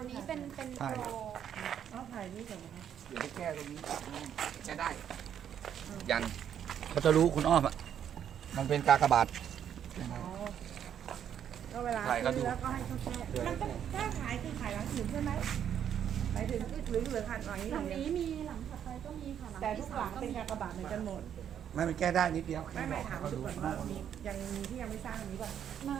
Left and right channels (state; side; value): quieter; left; 9.2 dB